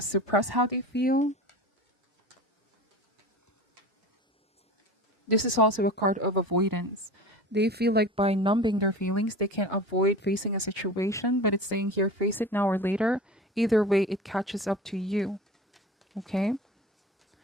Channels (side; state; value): both; normal; correlation 0.35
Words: how they feel. This is also a card of avoidance. They feel like by numbing their feelings, they can avoid facing a situation, but it's saying here, face it now or later. Either way, it catches up to you. Okay?